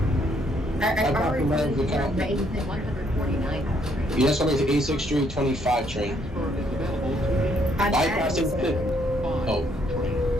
I already Your told you next stop is 86th Street, 25 train. Bypassing Oh.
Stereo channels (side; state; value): both; normal; correlation 0.69